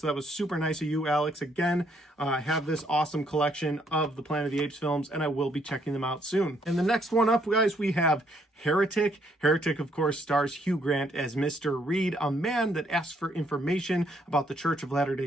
that was super nice of you, Alex. Again, I have this awesome collection of the Planet of the Apes films, and I will be checking them out soon. And the next one up, guys, we have Heretic. Heretic, of course, stars Hugh Grant as Mr. Reed, a man that asks for information about the Church of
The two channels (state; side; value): normal; both; correlation 0.70